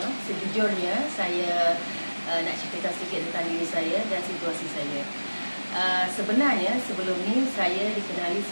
Sejujurnya saya nak ceritakan sedikit tentang diri saya dan situasi saya. Sebenarnya sebelum ni saya dikenali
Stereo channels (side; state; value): both; inverted; correlation -1.00